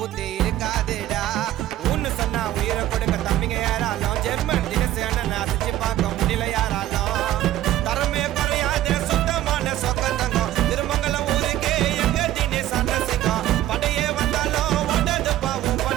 இருக்காதுடா. ஒன்னு சொன்னா உயிரை கொடுக்க தம்பிங்க யாராலும் ஜெர்மன் தினேஷ் அண்ணன் அசைச்சு பார்க்க முடியல யாராலும். தரமே குறையாத சுத்தமான சொக்கம் தங்கம் திருமங்கலம் ஊருக்கு எங்க தினேஷ் அண்ணன் சிங்கம். படையே வந்தாலும் ஓடாது பாவம்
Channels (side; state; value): left; quieter; 13.6 dB